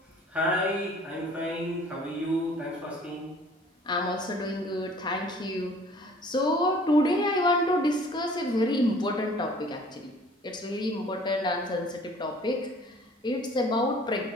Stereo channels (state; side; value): normal; both; correlation 0.52